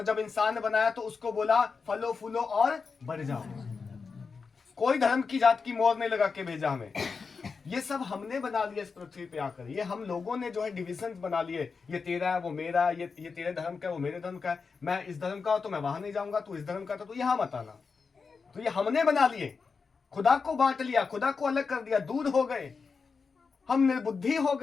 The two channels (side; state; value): right; quieter; 5.0 dB